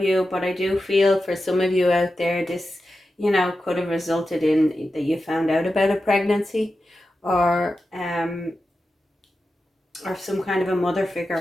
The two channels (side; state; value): both; normal; correlation 0.91